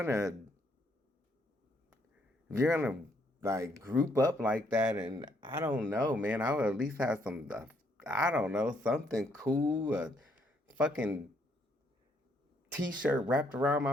like group up like that, and I don't know, man, I would at least have some, I don't know, something cool, a fucking t-shirt wrapped around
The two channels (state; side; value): normal; both; correlation 0.71